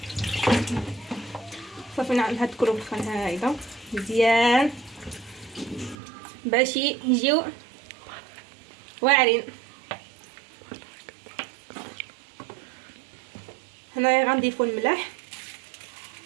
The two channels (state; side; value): drops out; left; at 6.0 s